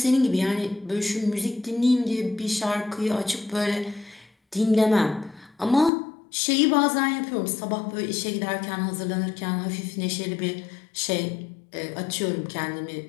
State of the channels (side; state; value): right; drops out; at 5.9 s